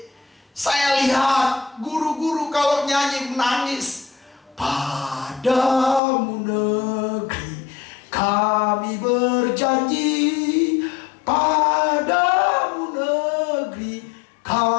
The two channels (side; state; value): right; drops out; at 6.0 s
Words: saya lihat guru-guru kalau nyanyi menangis. Padamu negeri kami berjanji, padamu negeri